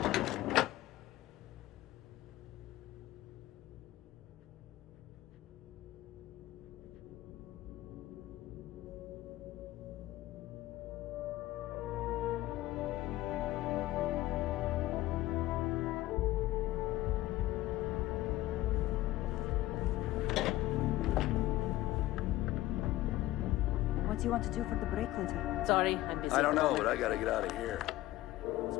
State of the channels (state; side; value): quieter; right; 16.4 dB